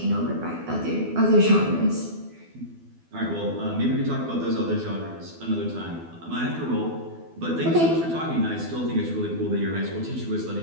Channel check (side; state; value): left; late; 12 ms